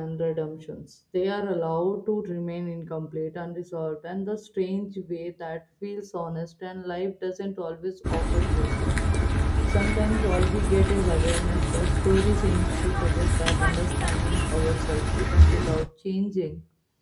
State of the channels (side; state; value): both; identical; correlation 1.00